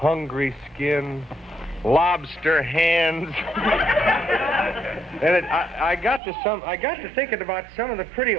skin, lobster hands. And I got to thinking about some of the pretty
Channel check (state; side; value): drops out; left; at 6.2 s